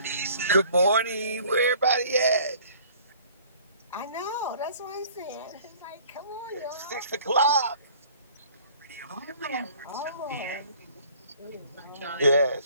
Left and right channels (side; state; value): both; inverted; correlation -0.53